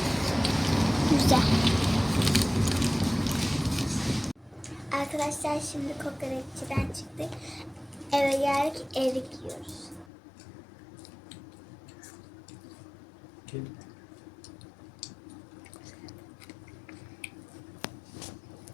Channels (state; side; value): drops out; right; at 10.1 s